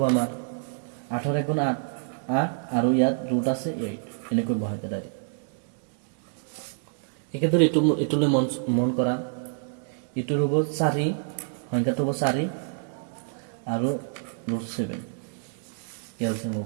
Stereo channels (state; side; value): silent; left; digital silence